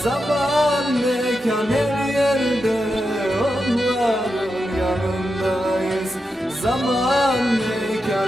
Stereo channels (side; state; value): both; normal; correlation 0.88